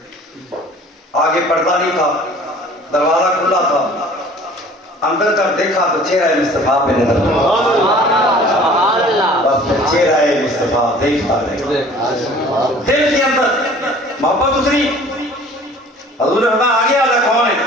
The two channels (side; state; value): both; normal; correlation 0.49